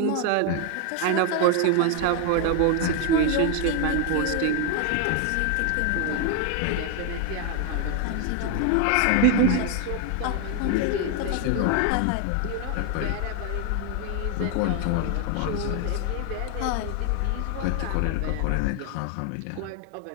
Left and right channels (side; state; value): both; different; correlation 0.01